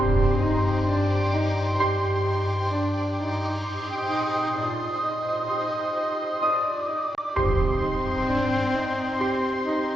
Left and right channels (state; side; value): normal; both; correlation 0.85